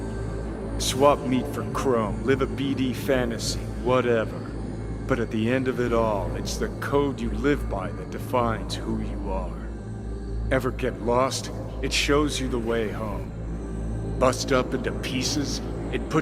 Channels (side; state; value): both; identical; correlation 1.00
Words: Swap meat for chrome, live a BD fantasy, whatever. But at the end of it all, it's the code you live by that defines who you are. Ever get lost? It shows you the way home. Bust up into pieces, it